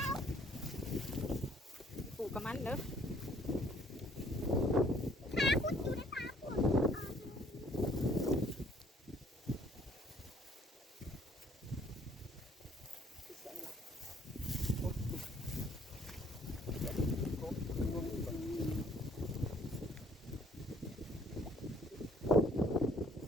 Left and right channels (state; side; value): normal; both; correlation 0.60